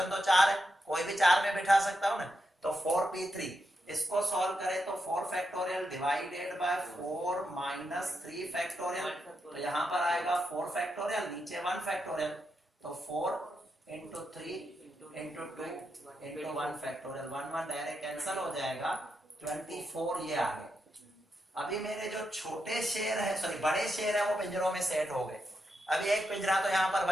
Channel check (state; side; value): normal; both; correlation 0.84